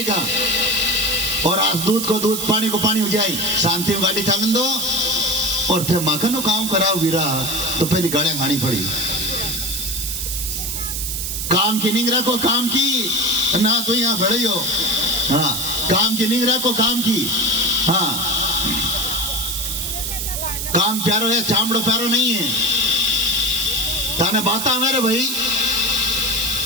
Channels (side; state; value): right; noise; hiss, 3 dB below the sound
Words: और आज दूध को दूध, पानी को पानी हो जाए, शांति में गाड़ी चालन दो, और थे माखन काम कराओ वीरा, तो पहली गाड़ियां खानी पड़ी। काम की निंग रखो, काम की ना तो यहाँ खड़े हो, हाँ, काम की निंग रखो, काम की, हाँ, काम प्यारो है, चामड़ो प्यारो नहीं है। ताने बाता मेरे भाई,